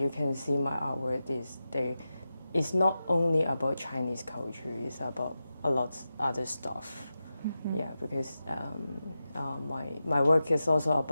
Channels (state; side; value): inverted; both; correlation -0.91